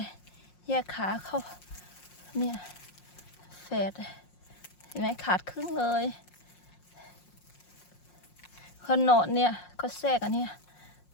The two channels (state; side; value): late; right; 5.6 ms